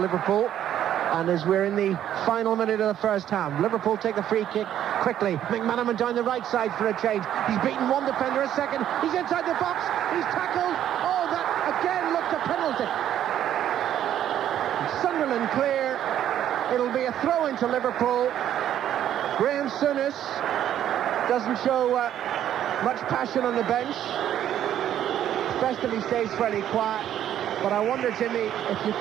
And as we're in the final minute of the first half, Liverpool take the free kick quickly. McManaman down the right side for a change. He's beaten one defender a second. He's inside the box. He's tackled. Oh, that again looked a penalty. Sunderland clear. It'll be a throw into Liverpool. Graham Souness doesn't show much passion on the bench. Festively stays fairly quiet. But I wonder, Jimmy, if you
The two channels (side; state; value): left; quieter; 10.9 dB